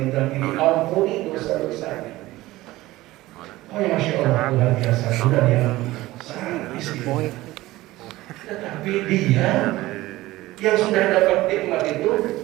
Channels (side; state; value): left; quieter; 17.8 dB